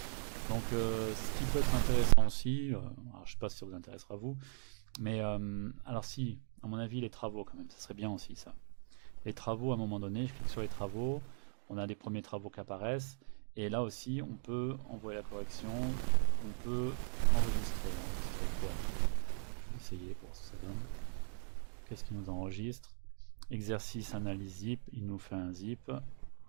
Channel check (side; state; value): left; silent; 52 dB below the other